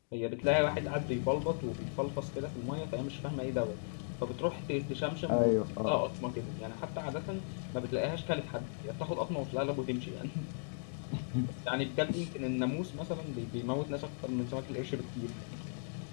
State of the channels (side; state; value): right; silent; digital silence